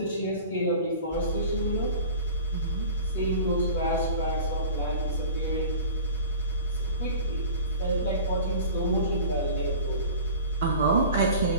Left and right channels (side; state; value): both; inverted; correlation -0.40